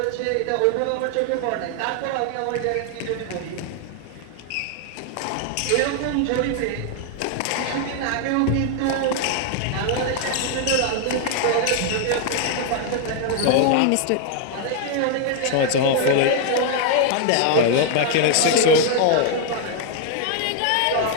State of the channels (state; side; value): different; both; correlation 0.00